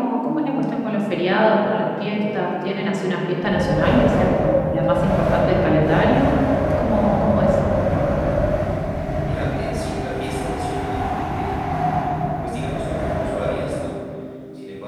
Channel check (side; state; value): both; identical; correlation 1.00